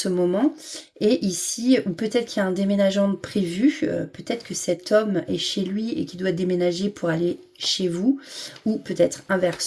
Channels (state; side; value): identical; both; correlation 1.00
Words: moment, et ici, ou peut-être qu'il y a un déménagement de prévu, peut-être que cet homme est chez lui et qu'il doit déménager pour aller chez vous, ou peut-être